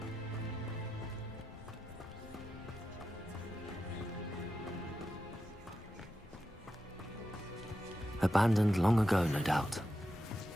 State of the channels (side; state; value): both; normal; correlation 0.89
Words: Abandoned long ago, no doubt.